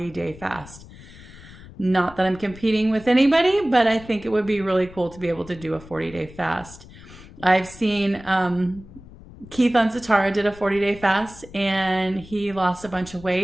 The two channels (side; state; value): left; noise; rumble, 19 dB below the sound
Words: fast. Not that I'm competing with anybody, but I think it would be really cool to be able to do a 40-day fast. I've seen Keith on Satara did a 40-day fast and he lost a bunch of